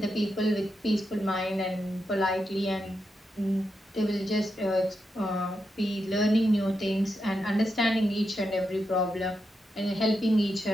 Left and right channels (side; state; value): both; normal; correlation 0.86